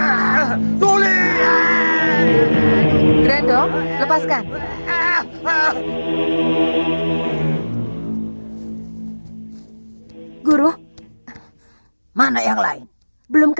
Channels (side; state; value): both; inverted; correlation -1.00